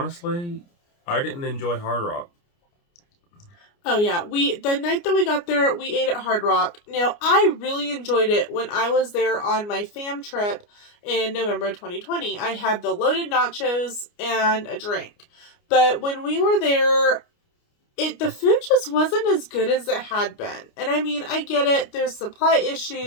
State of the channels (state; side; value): late; right; 29 ms